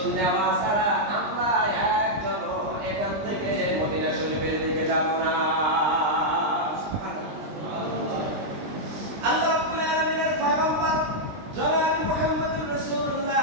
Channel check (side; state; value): left; late; 20 ms